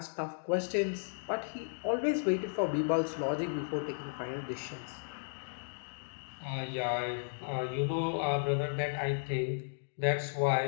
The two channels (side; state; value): right; silent; digital silence